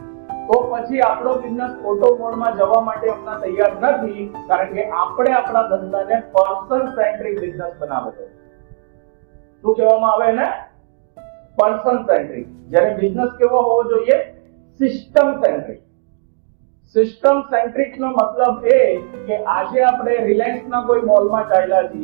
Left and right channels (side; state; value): left; silent; digital silence